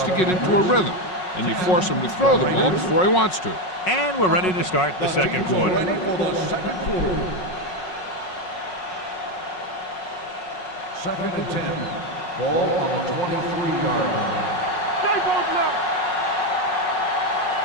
to get into a rhythm, and you force him to throw the ball before he wants to. And we're ready to start the second quarter. Second and 10. Ball on the 23-yard line. Stay both up.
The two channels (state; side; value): late; right; 5.5 ms